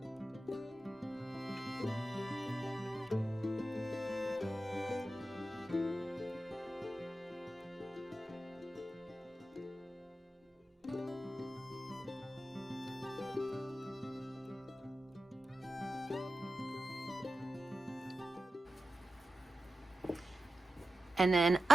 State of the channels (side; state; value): both; normal; correlation 0.92